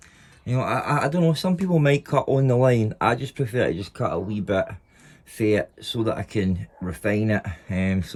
You know, I don't know, some people might cut on the line. I just prefer to just cut a wee bit fit so that I can refine it,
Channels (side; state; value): both; identical; correlation 1.00